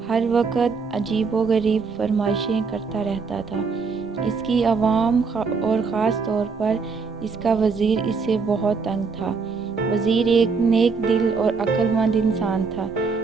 ہر وقت عجیب و غریب فرمائشیں کرتا رہتا تھا۔ اس کی عوام اور خاص طور پر اس کا وزیر اس سے بہت تنگ تھا۔ وزیر ایک نیک دل اور عقل مند انسان تھا،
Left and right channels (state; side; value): quieter; left; 4.9 dB